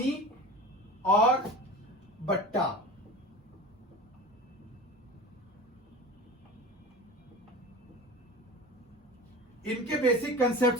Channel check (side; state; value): both; normal; correlation 0.34